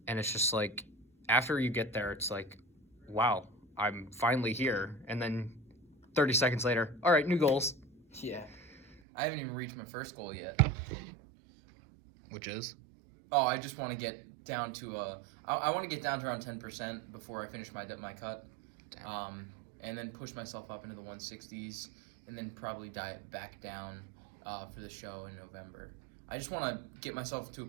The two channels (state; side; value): drops out; left; at 9.0 s